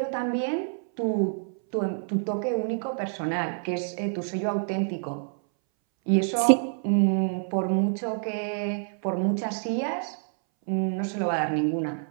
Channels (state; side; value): silent; left; 60 dB below the other